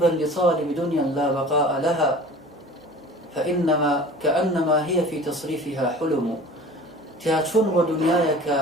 لطالب دنيا لا بقاء لها فإنما كأنما هي في تصريفها حلم. تياتشون ودنياك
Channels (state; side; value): normal; both; correlation 0.42